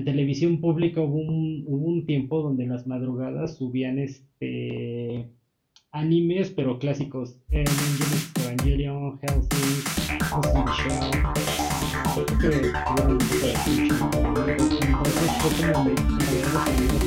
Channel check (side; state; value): both; identical; correlation 1.00